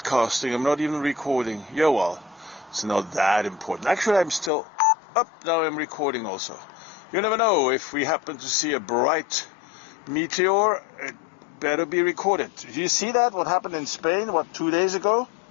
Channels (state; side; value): drops out; right; at 4.5 s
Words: I'm not even recording. Yeah, well, it's not that important. Actually, I'm still up. Now I'm recording also. You never know, if we happen to see a bright meteor, it better be recorded. Did you see that? What happened in Spain, 2 days ago?